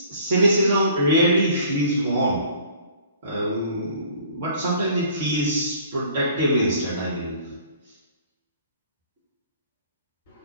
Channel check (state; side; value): inverted; both; correlation -0.51